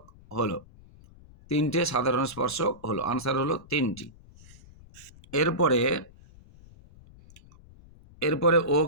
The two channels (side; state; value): left; noise; rumble, 23 dB below the sound